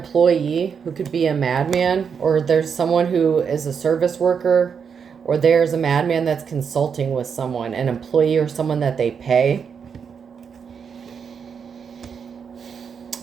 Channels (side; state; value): left; quieter; 6.6 dB